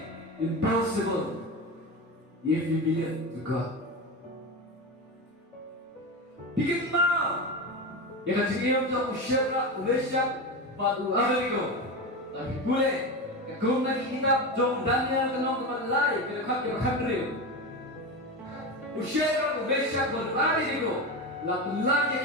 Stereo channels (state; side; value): normal; both; correlation 0.21